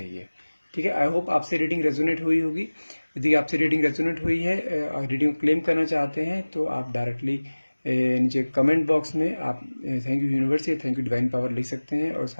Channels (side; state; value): both; inverted; correlation -1.00